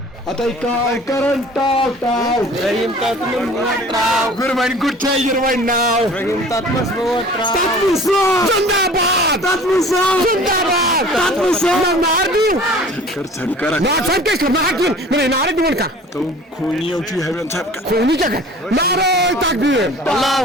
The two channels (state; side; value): normal; both; correlation 0.46